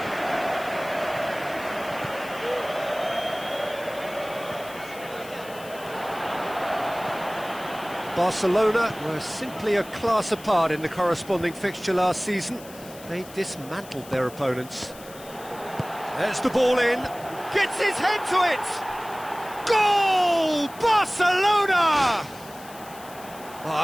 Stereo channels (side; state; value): left; noise; hiss, 19 dB below the sound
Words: Barcelona were simply a class apart in the corresponding fixture last season. They dismantled their opponents. There's the ball in. Gets his head to it! Goal! Barcelona!